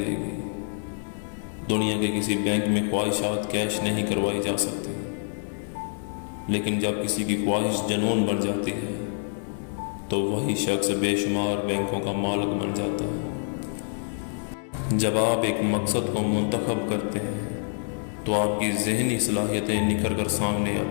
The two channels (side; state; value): right; silent; 60 dB below the other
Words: گی۔ دنیا کے کسی بینک میں خواہشات کیش نہیں کروائی جا سکتی، لیکن جب کسی کی خواہش جنون بن جاتی ہے تو وہی شخص بے شمار بینکوں کا مالک بن جاتا ہے۔ جب آپ ایک مقصد کو منتخب کرتے ہیں تو آپ کی ذہنی صلاحیتیں نکھر کر سامنے